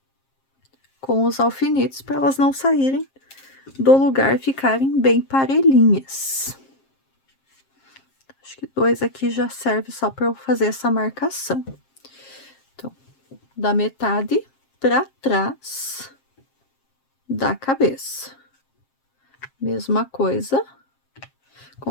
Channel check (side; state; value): right; late; 7.5 ms